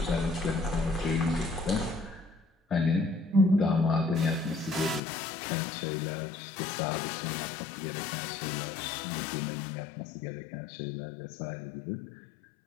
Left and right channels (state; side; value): drops out; right; at 5.0 s